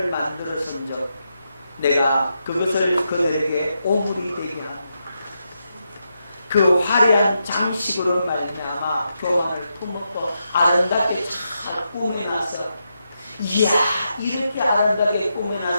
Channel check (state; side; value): inverted; both; correlation -0.84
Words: 만들었은즉 내가 그것을 그들에게 오물이 되게 하노라. 그 화려한 장식으로 말미암아 교만을 품었고 아름답게 잘 꾸며놨어. 이야, 이렇게 아름답게